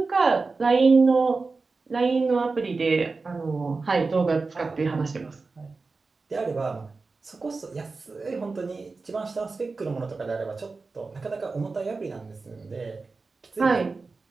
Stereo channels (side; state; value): left; quieter; 4.0 dB